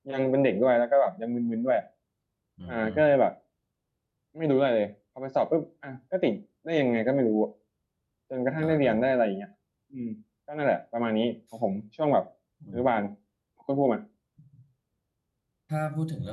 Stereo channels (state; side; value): identical; both; correlation 1.00